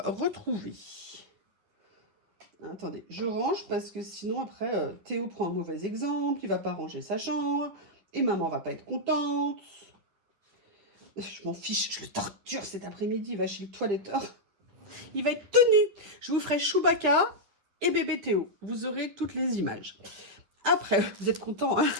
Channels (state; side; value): late; left; 10 ms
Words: retrouvée. Attendez, je range parce que sinon, après, Théo prend un mauvais exemple. Il ne va pas ranger sa chambre. Et maman ne va pas être contente. Je m'en fiche, je le torture cet après-midi. Il va chez le toiletteur. Il va être tenu. Je vous ferai Chewbacca et bébé Théo. Vous aurez toutes les images. Après, vous êtes contents, hein?